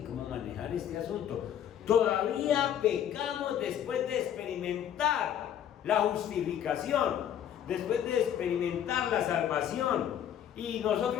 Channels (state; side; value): quieter; right; 9.9 dB